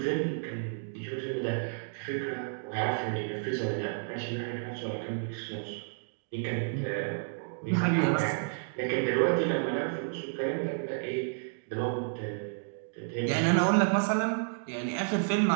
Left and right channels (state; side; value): silent; left; digital silence